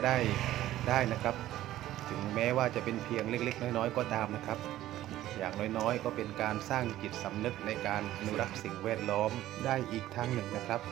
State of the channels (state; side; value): quieter; left; 14.2 dB